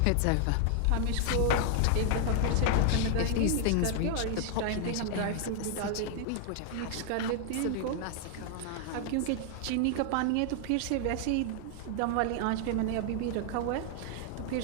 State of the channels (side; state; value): both; different; correlation 0.00